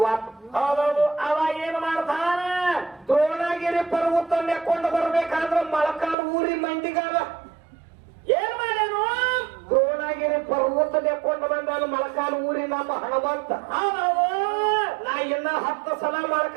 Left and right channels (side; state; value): left; drops out; at 6.2 s